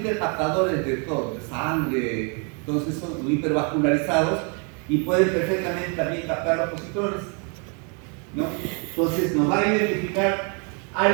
de todo, de sangre, entonces son hipervascularizados y pueden perfectamente también captar los positrones, ¿no? Entonces nos va a identificar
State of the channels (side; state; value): left; quieter; 36.5 dB